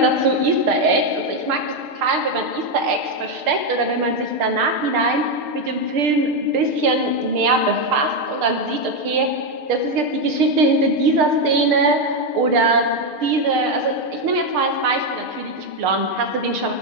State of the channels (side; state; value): left; late; 6.6 ms